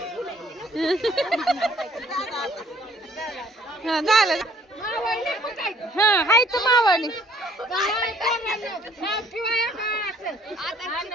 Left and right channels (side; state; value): both; normal; correlation 0.60